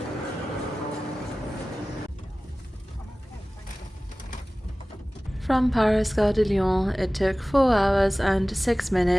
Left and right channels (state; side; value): normal; both; correlation 0.98